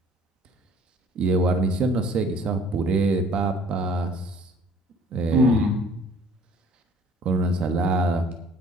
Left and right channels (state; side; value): normal; both; correlation 0.53